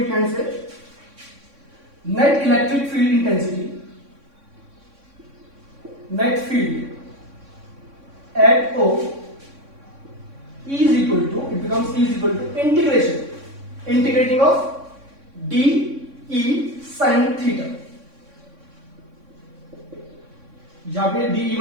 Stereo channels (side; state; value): left; late; 3.6 ms